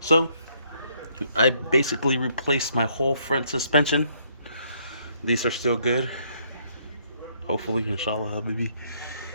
I basically replaced my whole front suspension. These are still good. Hopefully, inshallah, baby.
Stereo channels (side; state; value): both; inverted; correlation -0.69